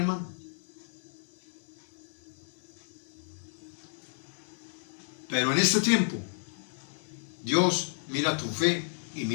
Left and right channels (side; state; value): right; silent; 56 dB below the other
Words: Pero en este tiempo, Dios mira tu fe y